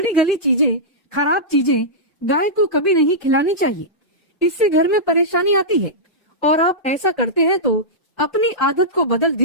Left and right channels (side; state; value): both; normal; correlation -0.14